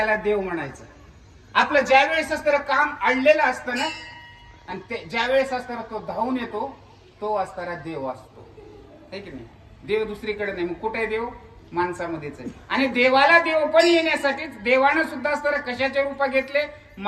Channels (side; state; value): both; identical; correlation 1.00